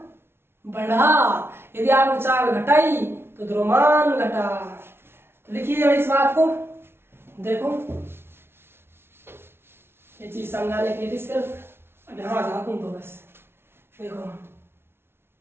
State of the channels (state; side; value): late; left; 0.12 ms